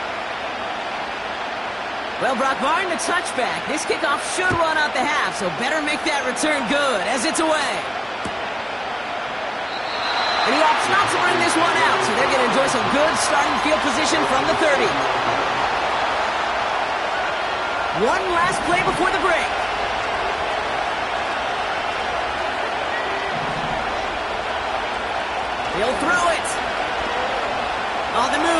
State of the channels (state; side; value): identical; both; correlation 1.00